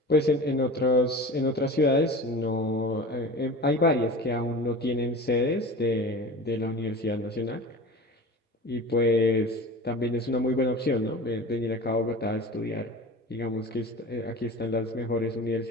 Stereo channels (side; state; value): both; normal; correlation 0.35